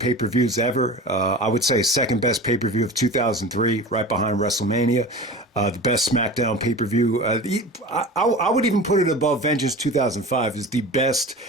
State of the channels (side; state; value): both; normal; correlation 0.34